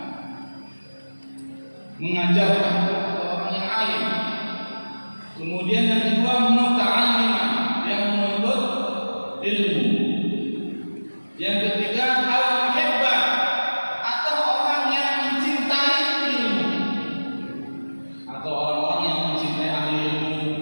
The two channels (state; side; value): inverted; both; correlation -1.00